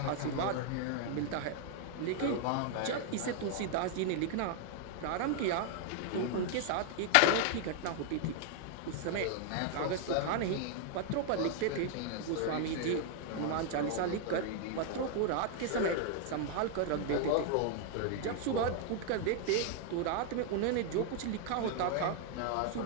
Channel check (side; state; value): both; different; correlation 0.00